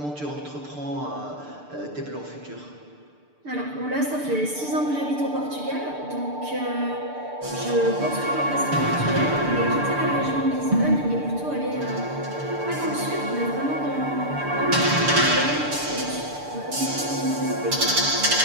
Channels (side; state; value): left; late; 6.8 ms